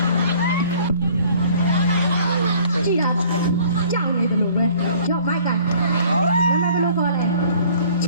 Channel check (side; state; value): both; inverted; correlation -0.54